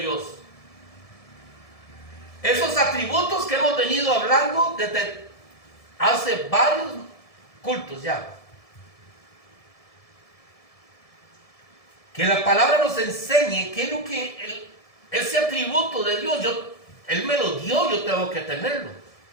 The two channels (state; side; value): late; right; 1.7 ms